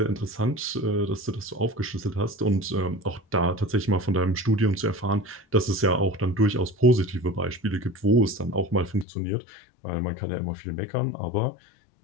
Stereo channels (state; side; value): drops out; right; at 9.1 s